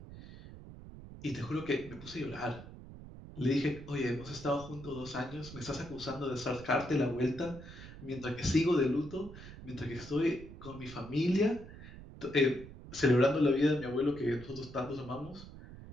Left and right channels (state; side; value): noise; right; rumble, 15 dB below the sound